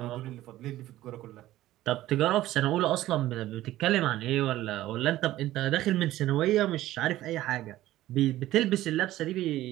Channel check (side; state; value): left; quieter; 15.1 dB